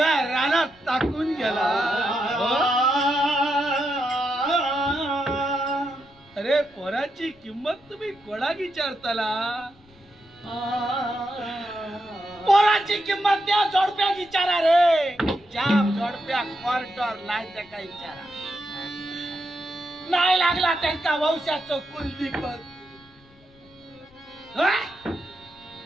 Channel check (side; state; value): left; noise; rumble, 28 dB below the sound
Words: रानात टाकून गेला अरे पोराची किंमत तुम्ही कोणा विचारताला पोराची किंमत त्या जोडप्या विचारा रे जाम जोडप्या क्वार्टर नाही त्या काही विचारा नाही लागला त्यांचा वंशाचं कुलदीपक